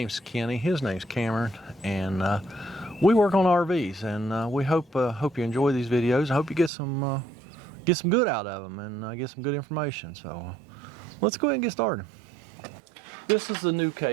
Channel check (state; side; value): drops out; left; at 6.7 s